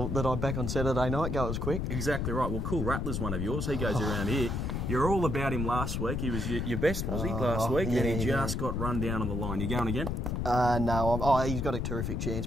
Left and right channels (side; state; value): left; noise; rumble, 1 dB below the sound